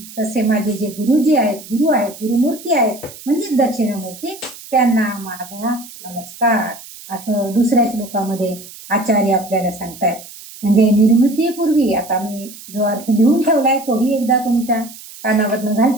तसे माझे जे गुरुजी आहेत, गुरुमूर्ती आहेत म्हणजे दक्षिणामूर्ती, त्यांना माझा नमस्कार, असं दुसऱ्या श्लोकामध्ये आचार्य आपल्याला सांगतायत. म्हणजे निर्मितीपूर्वी आता मी जो अर्थ लिहून ठेवलाय तोही एकदा तुमच्या कानावरनं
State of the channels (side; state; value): right; noise; hiss, 17 dB below the sound